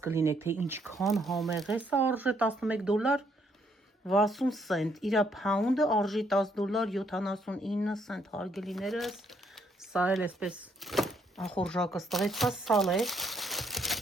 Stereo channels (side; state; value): both; normal; correlation 0.71